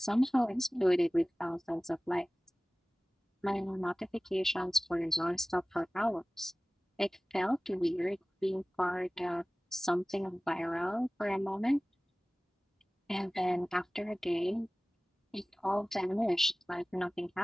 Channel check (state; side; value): normal; both; correlation 0.98